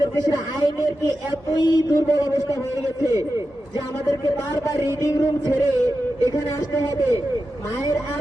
দেশের আইনের কি এতই দুর্বল অবস্থা হয়ে গেছে যে আমাদেরকে বারবার রিডিং রুম ছেড়ে এখানে আসতে হবে, মায়ের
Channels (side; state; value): left; late; 2.4 ms